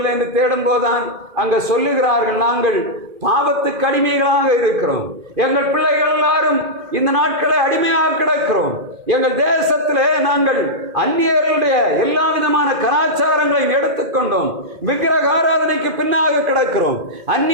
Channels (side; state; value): left; late; 2.4 ms